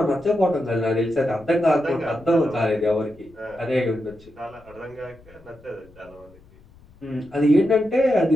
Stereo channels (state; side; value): noise; left; rumble, 26 dB below the sound